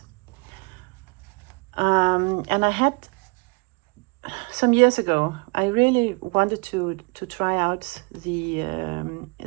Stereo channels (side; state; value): left; quieter; 30.5 dB